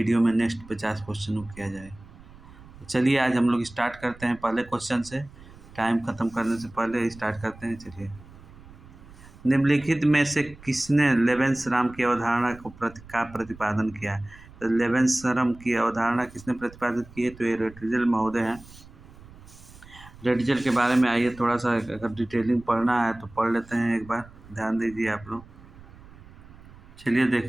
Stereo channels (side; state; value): right; noise; rumble, 20 dB below the sound